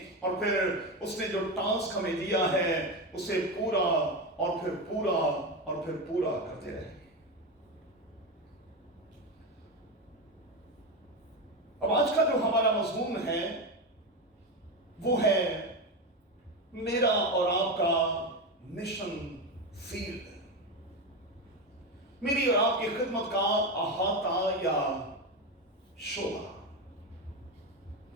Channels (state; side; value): normal; both; correlation 0.16